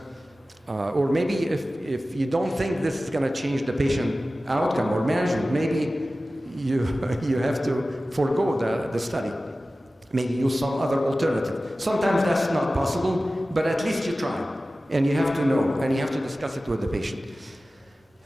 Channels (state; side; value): normal; both; correlation 0.96